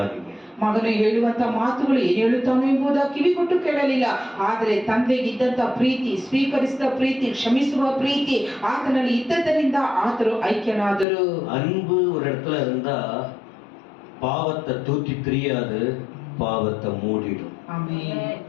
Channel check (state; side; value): drops out; right; at 11.1 s